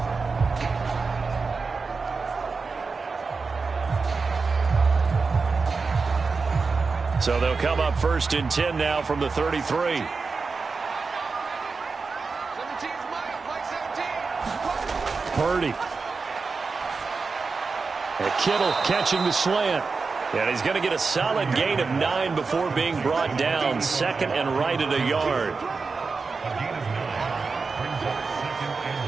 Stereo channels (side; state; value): left; quieter; 4.5 dB